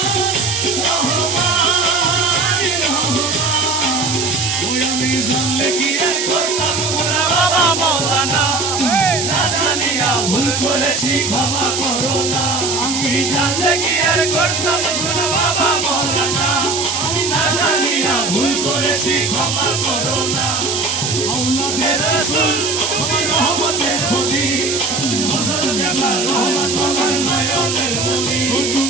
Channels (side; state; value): right; noise; hiss, 2 dB below the sound